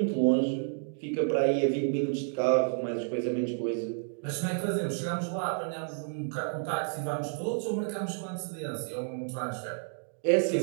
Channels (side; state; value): left; silent; digital silence